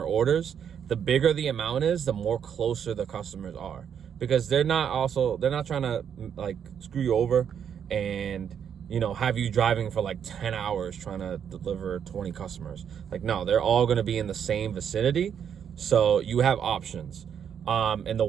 orders, the bigger the amount is, the more closer the customers are, because they're not trying to like screw you over and, you know, have you driving for like 10 hours trying to deliver 20 customers. Like, no, they're all going to be in the same vicinity. So you have options. And the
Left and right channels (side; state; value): left; quieter; 8.2 dB